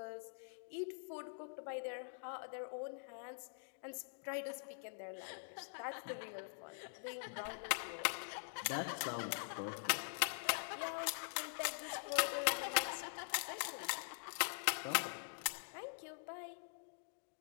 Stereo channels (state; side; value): silent; right; digital silence